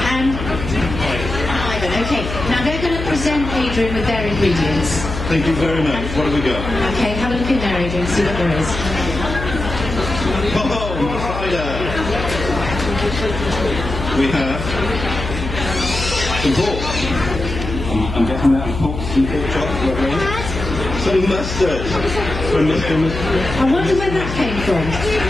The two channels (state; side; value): noise; left; hum, 7 dB below the sound